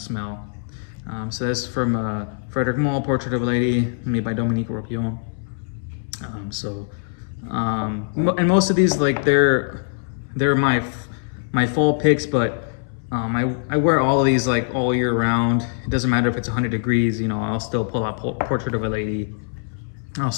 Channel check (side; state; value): right; silent; 61 dB below the other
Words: So that's from Frederic Malle, Portrait of a Lady, made by Dominique Ropion. And most of these, like, they're my fall picks, but I wear all of these like all year round. It doesn't matter if it's 100 degrees. You know, I'll still pull out Portrait of a Lady. I'll